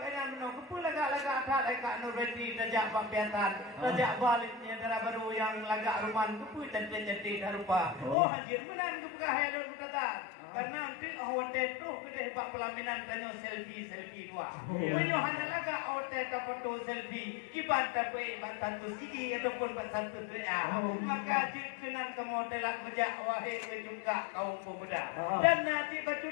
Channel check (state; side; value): drops out; right; at 8.2 s